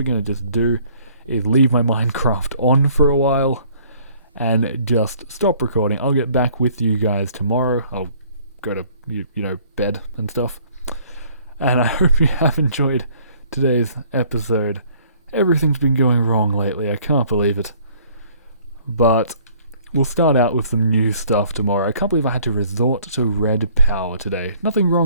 going to just do is leave my Minecraft on for a while and just stop recording. I'll get back with you guys tomorrow. I'll go to, you know, bed and stuff. And I hope you have enjoyed today's episode. Everything's been going wrong lately, I can't believe it. But we'll start out with some new stuff tomorrow. I can't believe I had to resort to Redpower today. Nothing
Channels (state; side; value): inverted; both; correlation -0.58